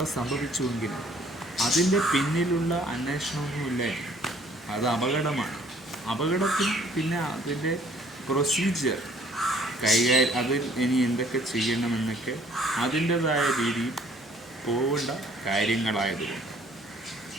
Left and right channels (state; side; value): normal; both; correlation 0.59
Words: സംഭവിച്ചുവെങ്കിൽ അതിൻ്റെ പിന്നിലുള്ള അന്വേഷണമൊന്നുമില്ല. അത് അപകടമാണ്. അപകടത്തിൽ പിന്നെ അതിൻ്റെ പ്രൊസീജിയർ അതിൽ ഇനി എന്തൊക്കെ ചെയ്യണമെന്നൊക്കെ അതിൻ്റെതായ രീതിയിൽ പോകേണ്ട കാര്യങ്ങളായതുകൊണ്ട്